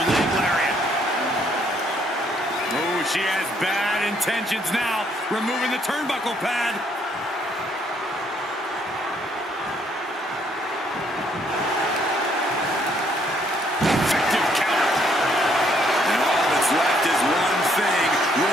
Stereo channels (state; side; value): normal; both; correlation 0.68